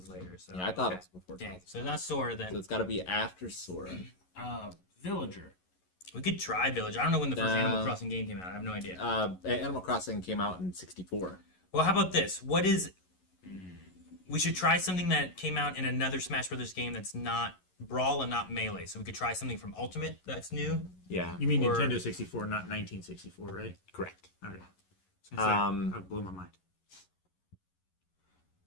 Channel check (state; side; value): late; right; 11 ms